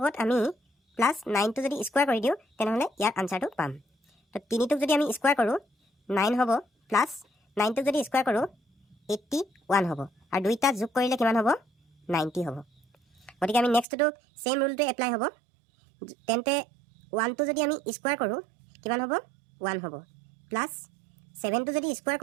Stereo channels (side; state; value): left; drops out; at 13.9 s